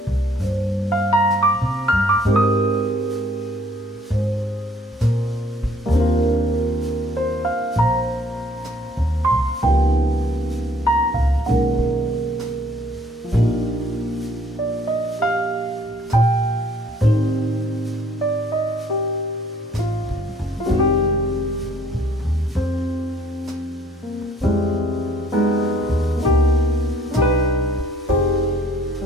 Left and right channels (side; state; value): both; normal; correlation 0.60